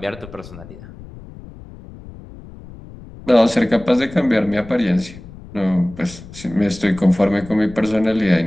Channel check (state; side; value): noise; left; rumble, 17 dB below the sound